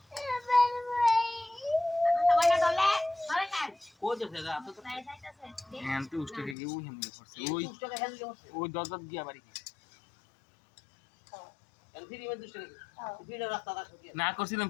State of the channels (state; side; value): drops out; right; at 6.6 s